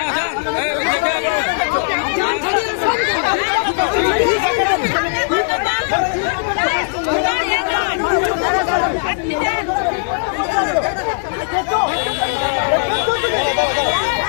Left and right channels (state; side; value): silent; right; digital silence